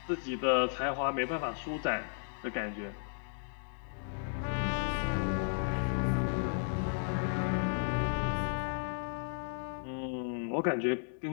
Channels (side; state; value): right; silent; digital silence